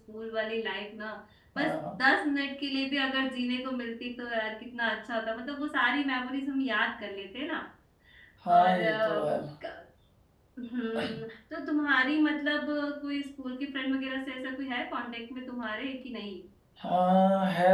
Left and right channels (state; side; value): identical; both; correlation 1.00